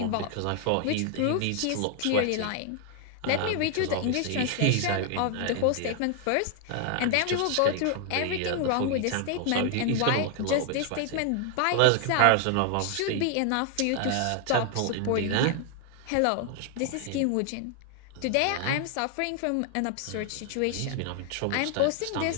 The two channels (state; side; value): different; both; correlation 0.00